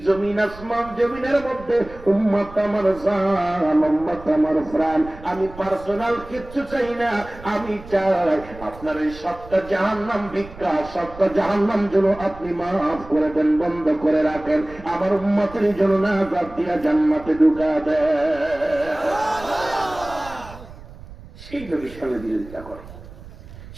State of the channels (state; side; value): noise; right; rumble, 17 dB below the sound